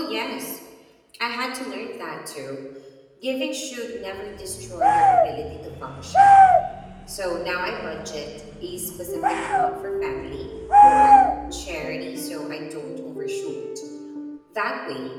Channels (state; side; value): identical; both; correlation 1.00